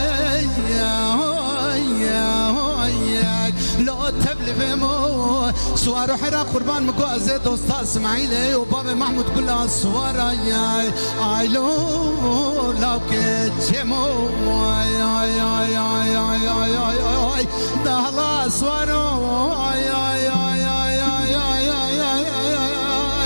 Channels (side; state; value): both; inverted; correlation -1.00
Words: لو تبلي مو سوار حيرا قربان مقوازي دوستا اسماعيلي وبابا محمود كلها سوارا اي لو لو كتشمو دهلا سوارو